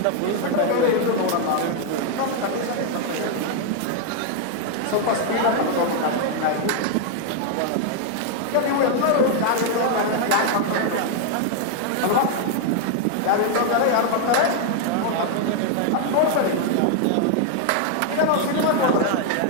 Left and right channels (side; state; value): both; different; correlation 0.00